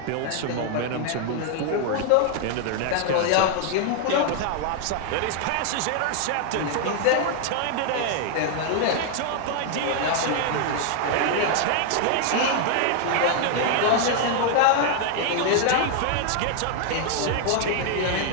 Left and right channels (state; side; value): different; both; correlation 0.00